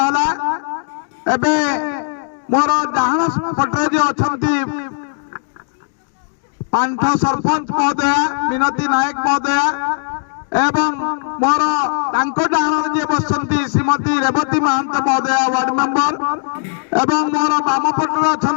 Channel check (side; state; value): right; silent; digital silence